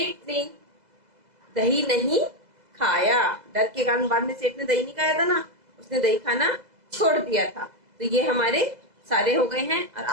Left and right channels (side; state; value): left; late; 2.0 ms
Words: ने दही नहीं खाया, डर के कारण बाद में सेठ ने दही नहीं खाया था ना, उसने दही खाना छोड़ दिया था। तो ये हमारे सारे हो गए हैं और